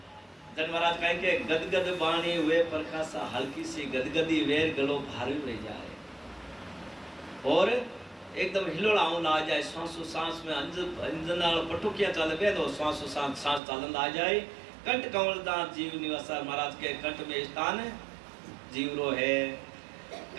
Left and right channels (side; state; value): left; drops out; at 13.6 s